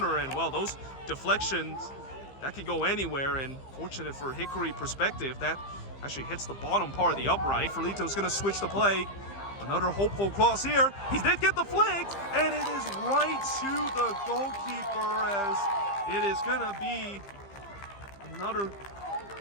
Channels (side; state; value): right; late; 15 ms